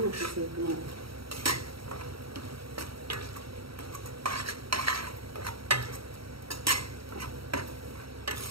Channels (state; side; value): late; left; 0.75 ms